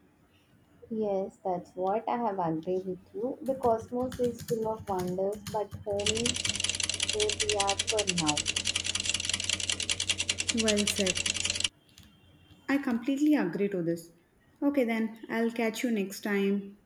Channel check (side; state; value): both; identical; correlation 1.00